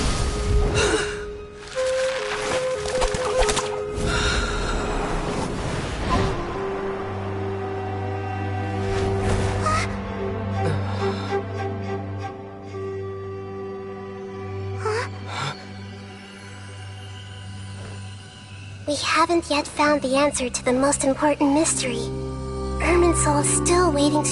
We haven't yet found the answer to the most important mystery. Irminsul is still waiting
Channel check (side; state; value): both; identical; correlation 1.00